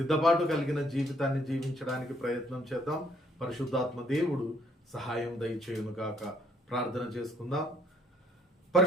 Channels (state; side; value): normal; both; correlation 0.65